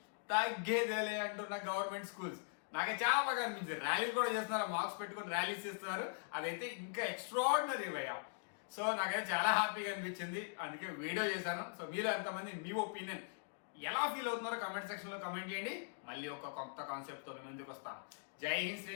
తగ్గేదేలే అంటున్న గవర్నమెంట్ స్కూల్స్ నాకు చాలా బాగా అనిపించింది. ర్యాలీలు కూడా చేస్తున్నారు, మార్క్స్ పెట్టుకుని ర్యాలీస్ ఇస్తున్నారు, అదైతే ఇంకా ఎక్స్ట్రాడినరీ భయ్యా. సో నాకైతే చాలా హ్యాపీగా అనిపించింది, అందుకే వీడియో చేశాను. సో మీరు ఎంతమంది మీ ఒపీనియన్ ఎలా ఫీల్ అవుతున్నారో కమెంట్ సెక్షన్ లో కమెంట్ చేయండి. మళ్ళీ ఒక కొత్త కాన్సెప్ట్ తో మేము ముందుకు వస్తాం. జై హింద్,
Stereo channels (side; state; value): right; silent; digital silence